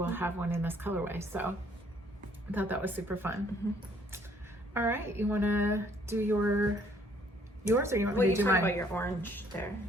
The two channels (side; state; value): both; normal; correlation 0.63